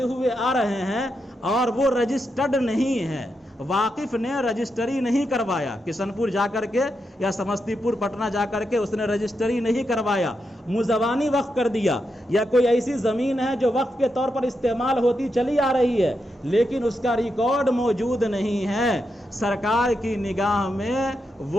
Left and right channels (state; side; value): normal; both; correlation 0.85